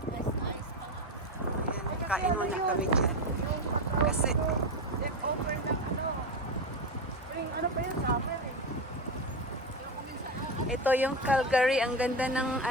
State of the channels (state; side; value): normal; both; correlation 0.16